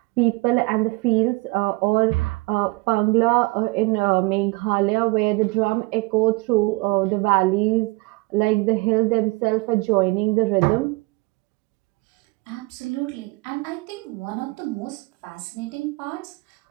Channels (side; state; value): left; quieter; 23.4 dB